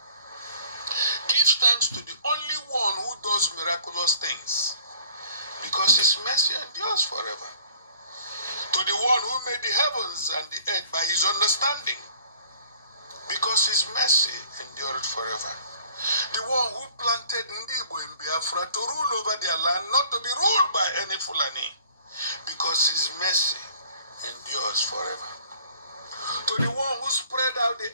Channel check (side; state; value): both; inverted; correlation -0.50